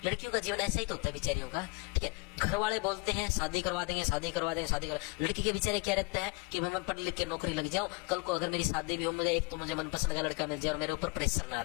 लड़कियों का जीवन ऐसा ही तो होता है बेचारियों का, ठीक है। घर वाले बोलते हैं शादी करवा देंगे, शादी करवा देंगे, शादी करवा। लड़की के बेचारे क्या रहता है कि मैं पढ़ लिख के नौकरी लग जाऊं, कल को अगर मेरी शादी भी हो, मुझे एक तो मुझे मनपसंद का लड़का मिल जाए और मेरे ऊपर प्रेशर ना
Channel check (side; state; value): right; quieter; 26.6 dB